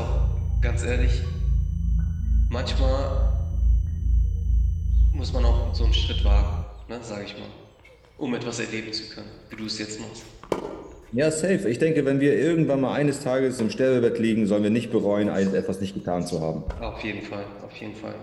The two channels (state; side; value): identical; both; correlation 1.00